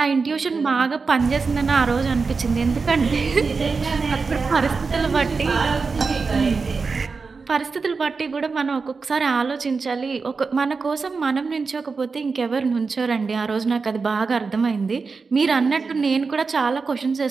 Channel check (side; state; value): left; quieter; 4.6 dB